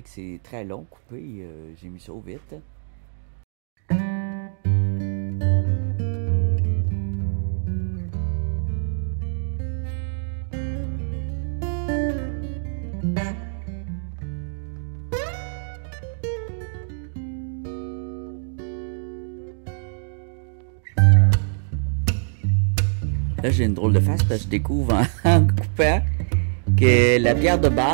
que c'est très long couper, j'ai mis ça au vite. Là, j'ai une drôle de face parce que je découvre en coupant que la pierre de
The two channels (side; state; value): left; silent; digital silence